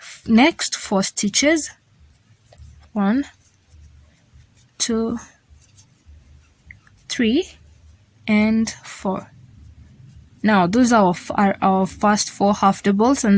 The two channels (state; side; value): identical; both; correlation 1.00